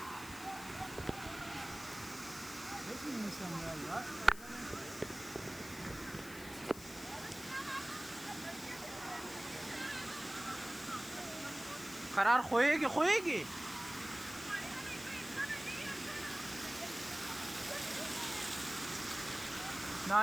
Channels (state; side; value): noise; left; hiss, 14 dB below the sound